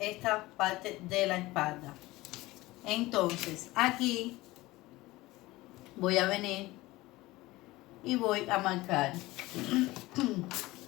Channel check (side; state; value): right; quieter; 19.4 dB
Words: parte de la espalda. Entonces aquí voy a venir y voy a marcar